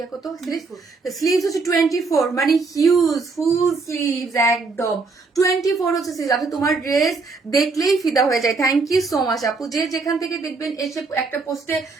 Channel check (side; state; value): left; quieter; 4.1 dB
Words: কত, স্লিভস হচ্ছে 24, মানে হিউজ ফুল স্লিভস একদম 24 হচ্ছে স্লিভস। আপনি তোমার ড্রেস দেখলেই ফিদা হয়ে যায়। থ্যাংক ইউ সো মাচ আপু, যে যেখান থেকে দেখবেন এসে একটা পোস্টে